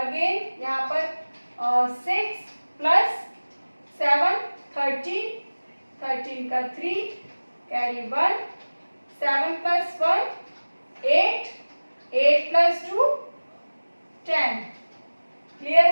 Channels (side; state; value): both; inverted; correlation -1.00